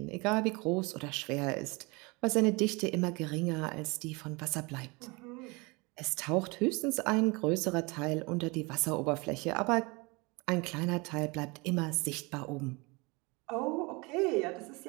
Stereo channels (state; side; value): quieter; left; 26.8 dB